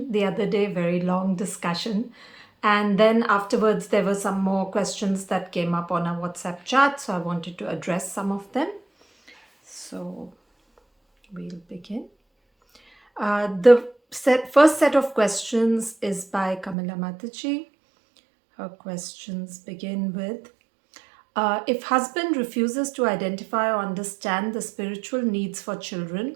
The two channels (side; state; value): left; drops out; at 16.8 s